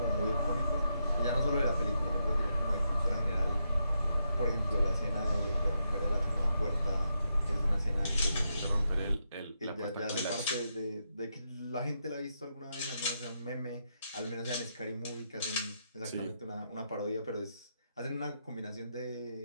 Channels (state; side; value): inverted; both; correlation -0.82